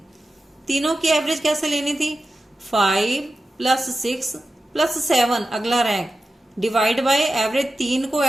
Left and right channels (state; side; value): normal; both; correlation 0.93